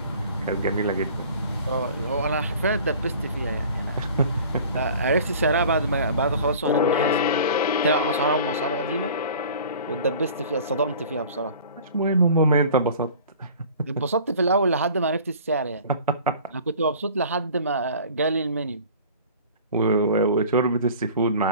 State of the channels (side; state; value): both; inverted; correlation -0.45